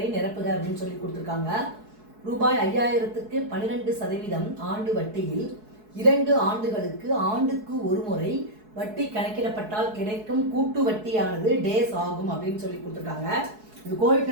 நிரப்புக அப்படின்னு சொல்லி கொடுத்துருக்காங்க. ரூபாய் 5000க்கு 12% ஆண்டு வட்டியில் 2 ஆண்டுகளுக்கு ஆண்டுக்கு ஒரு முறை வட்டி கணக்கிடப்பட்டால் கிடைக்கும் கூட்டு வட்டியானது டேஸ் ஆகும் அப்படின்னு சொல்லி கொடுத்துருக்காங்க. இது கோடிட்ட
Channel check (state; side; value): late; left; 4.7 ms